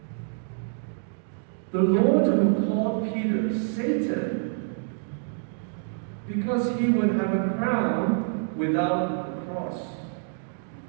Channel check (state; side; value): silent; left; digital silence